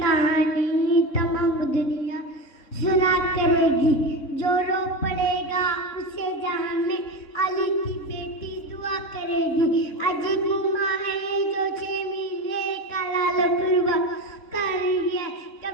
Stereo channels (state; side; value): late; right; 3.6 ms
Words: تمام دنیا سنا کرے گی، جو رو پڑے گا اسے جہاں میں علی کی بیٹی دعا کرے گی، عجیب ماں ہے جو 6 مہینے کا لال قربا کر رہی ہے،